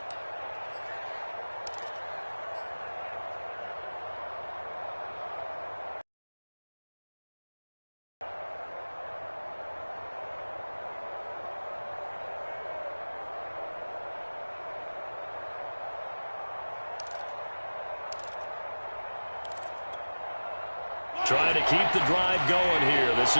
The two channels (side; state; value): both; inverted; correlation -1.00